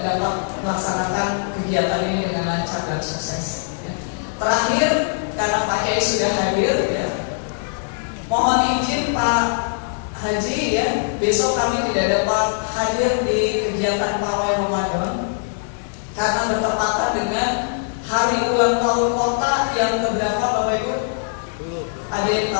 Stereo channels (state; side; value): silent; right; 61 dB below the other